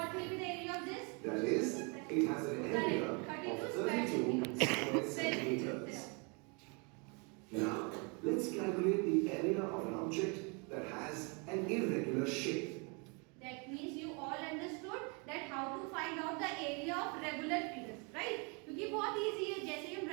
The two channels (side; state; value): left; quieter; 33.2 dB